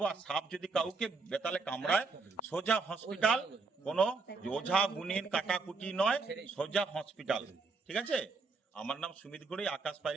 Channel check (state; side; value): quieter; left; 4.2 dB